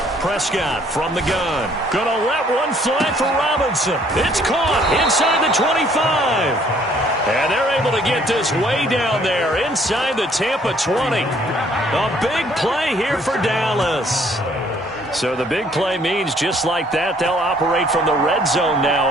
Prescott from the gun. Gonna let one fly for Robinson. It's caught inside the 25. And they're able to get this way down there inside the Tampa 20. A big play here for Dallas. So the big play means just like that, they'll operate from the red zone now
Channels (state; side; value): normal; both; correlation 0.62